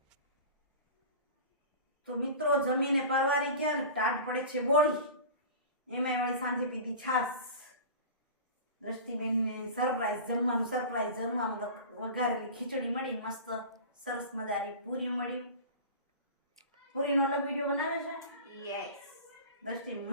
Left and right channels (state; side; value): inverted; both; correlation -0.34